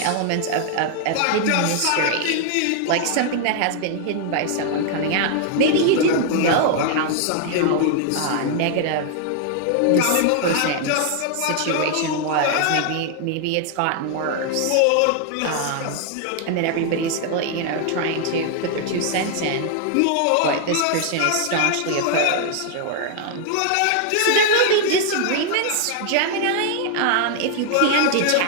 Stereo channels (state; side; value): different; both; correlation 0.00